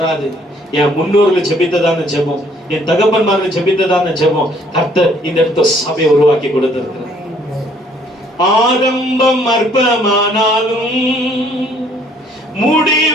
என் முன்னோர்கள் ஜெபித்ததான ஜெபம், என் தகப்பன்மார்கள் ஜெபித்ததான ஜெபம் கர்த்தர் இந்த இடத்துல சபையை உருவாக்கி கொடுத்திருக்கிறார். ஆரம்பம் அற்பமானாலும்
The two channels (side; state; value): both; normal; correlation 0.62